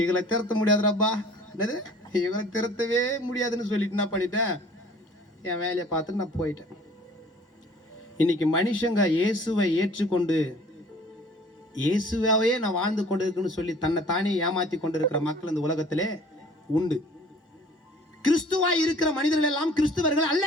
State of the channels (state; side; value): normal; both; correlation 0.51